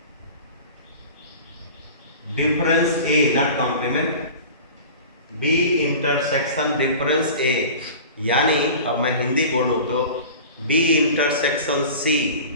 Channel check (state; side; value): inverted; both; correlation -0.37